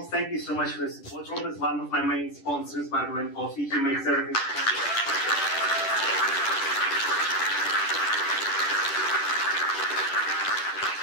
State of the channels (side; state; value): right; late; 10 ms